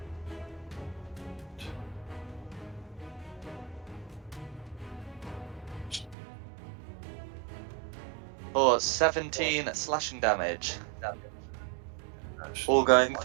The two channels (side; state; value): left; drops out; at 6.2 s